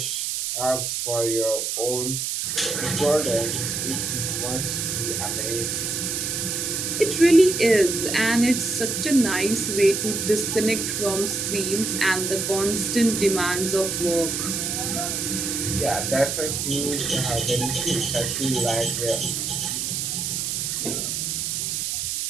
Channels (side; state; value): right; noise; hiss, 1 dB below the sound